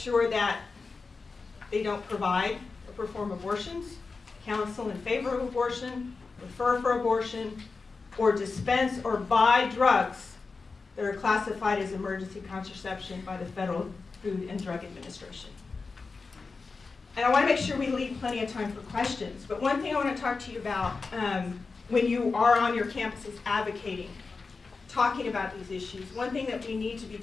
that they don't provide or perform abortions, counsel in favor of abortion, refer for abortion, or dispense or buy drugs that are classified as emergency contraception by the Federal Food and Drug Administration. And I want to make sure we leave plenty of time for questions. But one thing I want to talk to you about when you are on your campuses advocating, talking about these issues, one thing that we need to be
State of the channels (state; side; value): quieter; right; 4.3 dB